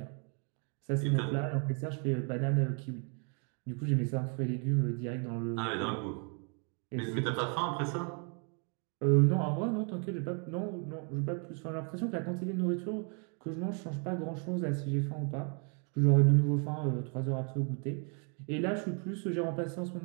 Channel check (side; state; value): left; quieter; 38.7 dB